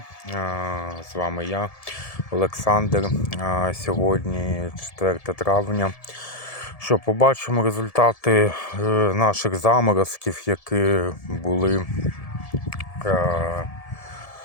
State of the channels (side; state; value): right; late; 1.7 ms